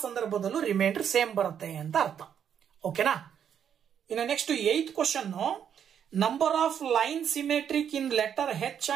ಸಂದರ್ಭದಲ್ಲೂ ರಿಮೈಂಡರ್ ಸೇಮ್ ಬರುತ್ತೆ ಅಂತ ಅರ್ಥ. ಓಕೆನಾ? ಇನ್ನು next 8th question, number of line symmetric in letter H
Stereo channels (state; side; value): quieter; left; 8.5 dB